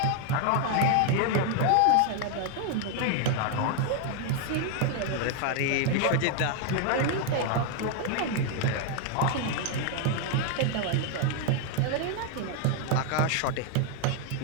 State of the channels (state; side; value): different; both; correlation 0.01